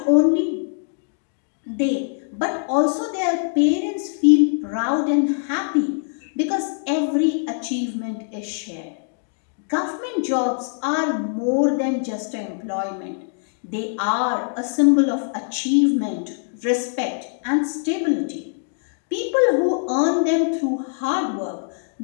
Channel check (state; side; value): silent; right; digital silence